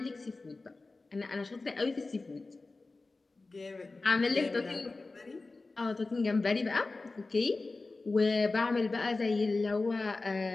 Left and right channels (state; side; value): quieter; right; 3.5 dB